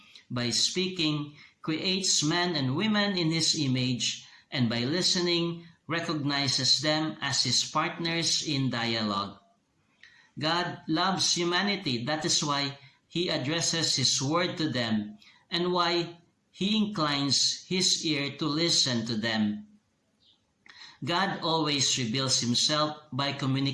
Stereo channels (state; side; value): identical; both; correlation 1.00